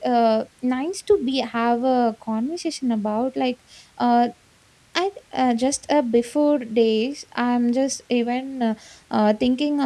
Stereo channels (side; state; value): both; identical; correlation 1.00